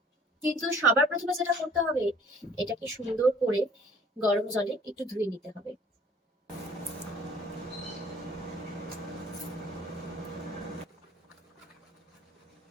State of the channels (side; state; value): both; normal; correlation 0.54